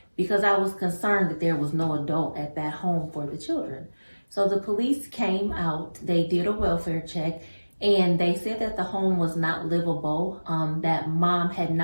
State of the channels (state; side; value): inverted; both; correlation -1.00